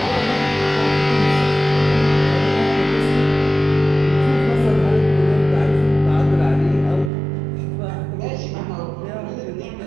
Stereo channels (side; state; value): left; drops out; at 7.1 s